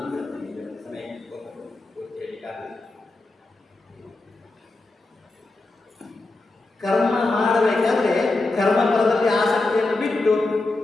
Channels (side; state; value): right; quieter; 3.1 dB